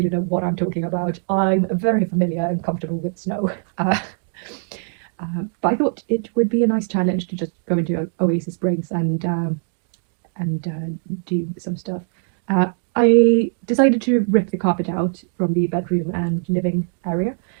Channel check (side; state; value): left; silent; 65 dB below the other